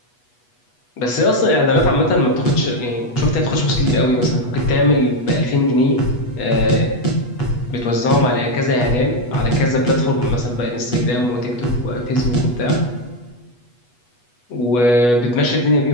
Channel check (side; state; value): right; late; 8.2 ms